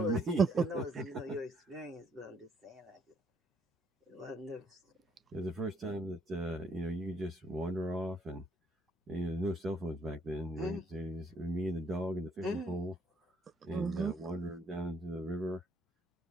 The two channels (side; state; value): both; normal; correlation 0.68